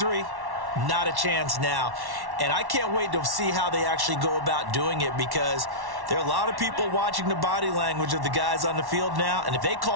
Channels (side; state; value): left; late; 1.1 ms